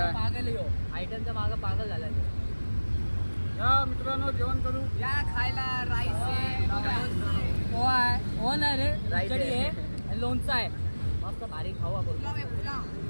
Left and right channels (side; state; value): both; inverted; correlation -1.00